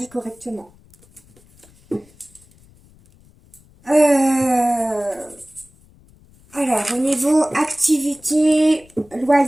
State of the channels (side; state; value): left; noise; rumble, 28 dB below the sound